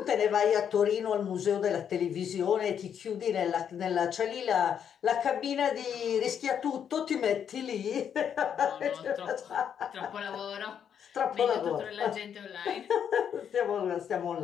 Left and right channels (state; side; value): quieter; right; 8.3 dB